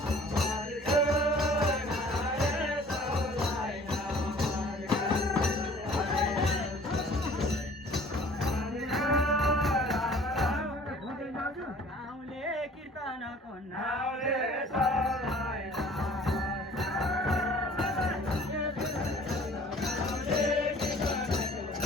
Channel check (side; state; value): both; normal; correlation 0.51